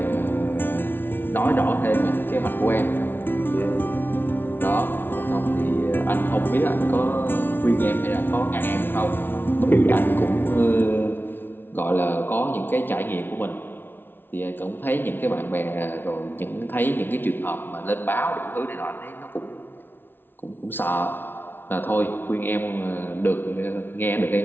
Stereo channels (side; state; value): right; late; 0.10 ms